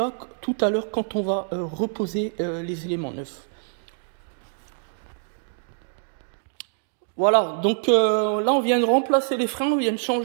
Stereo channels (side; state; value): left; silent; digital silence